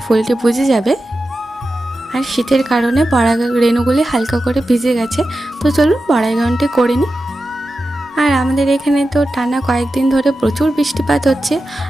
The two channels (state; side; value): normal; both; correlation 0.92